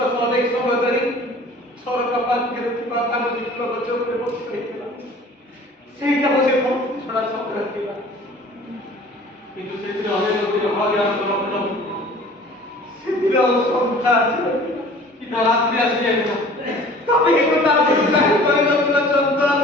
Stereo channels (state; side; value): normal; both; correlation 0.47